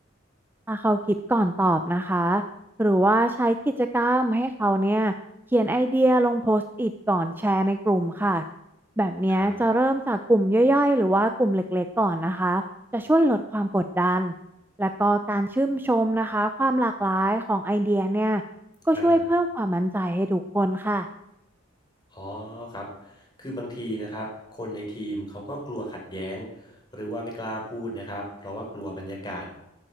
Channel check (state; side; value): normal; both; correlation 0.82